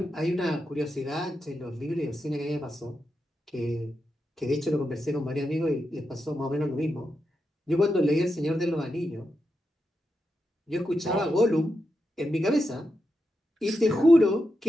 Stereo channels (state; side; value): normal; both; correlation 0.87